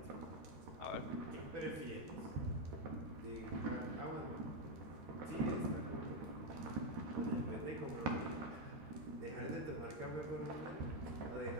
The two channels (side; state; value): left; late; 13 ms